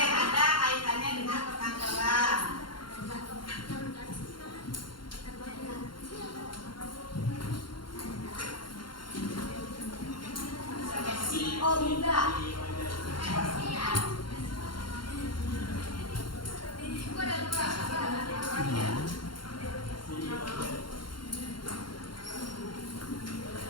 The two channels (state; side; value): late; right; 0.72 ms